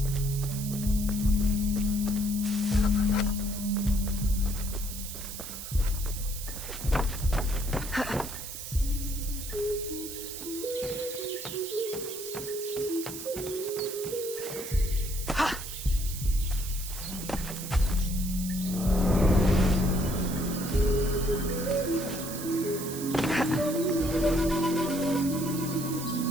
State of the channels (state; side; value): noise; right; hiss, 9 dB below the sound